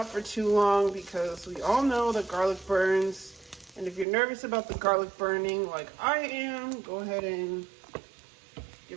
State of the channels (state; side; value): drops out; left; at 4.0 s